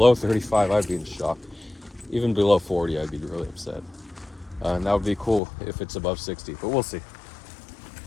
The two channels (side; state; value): right; drops out; at 5.4 s